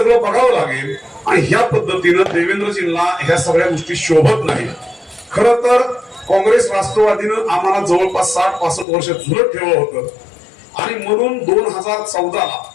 बघावं लागेल. आणि ह्या पद्धतीनं देवेंद्रजींना ह्या सगळ्या गोष्टी शोभत नाही. खरं तर काँग्रेस राष्ट्रवादीनं आम्हाला जवळपास 60-65 वर्ष झुलत ठेवलं होतं आणि म्हणून 2014ला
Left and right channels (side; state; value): right; drops out; at 8.8 s